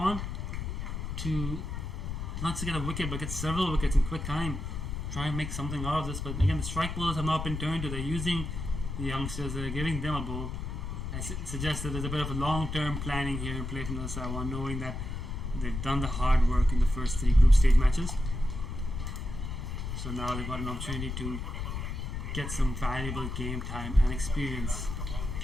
to not to get a wicket, but get several wickets in quick time. Try and make something out of this, but again, the strike bowlers have not been turned to. They're using the youngsters, they're giving them a bowl. I suggest that there's a bit of a long-term planning here in play from Little Taiwan, knowing that they've done the hard work in the first 3 group stage matches. So now they've got an opportunity to get some valuable game time and experience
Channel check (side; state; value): left; noise; rumble, 5 dB below the sound